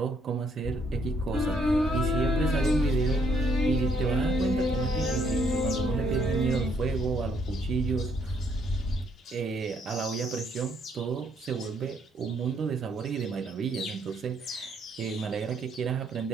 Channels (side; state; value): both; normal; correlation 0.70